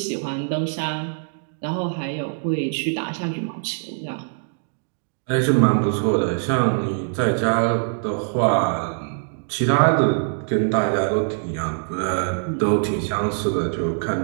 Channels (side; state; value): left; silent; digital silence